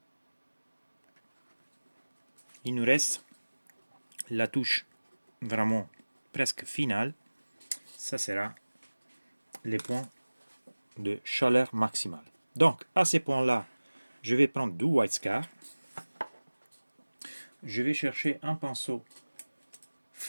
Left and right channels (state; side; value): inverted; both; correlation -1.00